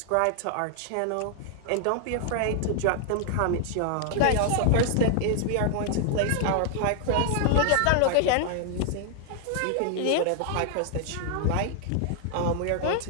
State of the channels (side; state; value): both; different; correlation 0.00